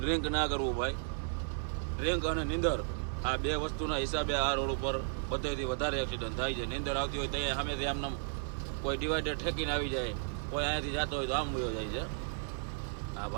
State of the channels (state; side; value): silent; left; digital silence